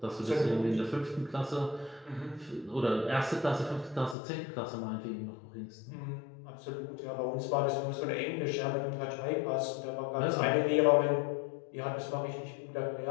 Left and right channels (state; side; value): drops out; right; at 4.2 s